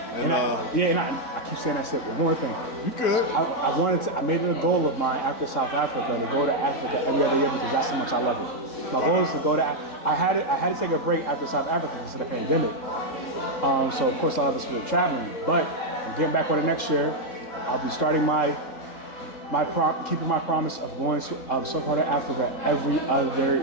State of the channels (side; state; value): right; late; 3.7 ms